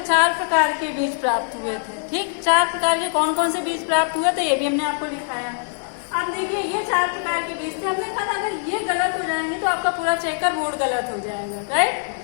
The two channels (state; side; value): silent; right; digital silence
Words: 4 प्रकार के बीज प्राप्त हुए थे। ठीक, 4 प्रकार के कौन कौन से बीज प्राप्त हुए थे ये भी हमने आपको दिखाया। अब देखिए, ये 4 प्रकार के बीज थे। हमने कहा अगर ये गलत हो जाएंगे तो आपका पूरा चेकर बोर्ड गलत हो जाएगा। राइट,